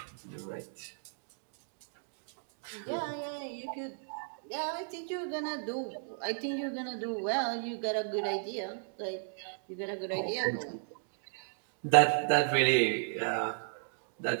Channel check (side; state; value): left; silent; digital silence